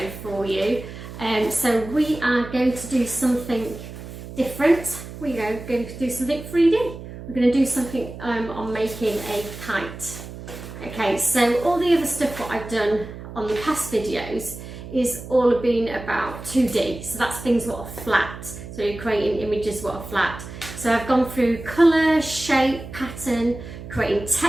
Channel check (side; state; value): right; noise; hum, 12 dB below the sound